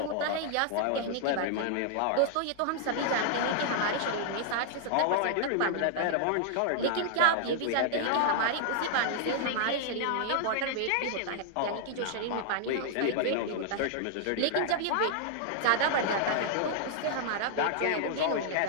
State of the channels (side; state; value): both; different; correlation -0.01